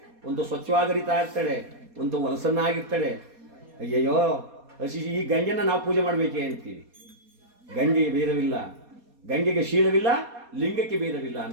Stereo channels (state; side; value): late; left; 4.2 ms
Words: ಒಂದು ಸ್ವಚ್ಛವಾಗಿ ಹರಿತಾ ಇರ್ತಾಳೆ, ಒಂದು ಹೊಲಸನ್ನಾಗಿರ್ತಾಳೆ. ಅಯ್ಯಯ್ಯೋ, ಈ ಗಂಗೆನ ನಾವು ಪೂಜೆ ಮಾಡಬೇಕೇ ಅಂತೀವಿ. ಗಂಗೆಗೆ ಭೇದವಿಲ್ಲ, ಗಂಗೆಗೆ ಶೀಲವಿಲ್ಲ, ಲಿಂಗಕ್ಕೆ ಭೇದವಿಲ್ಲ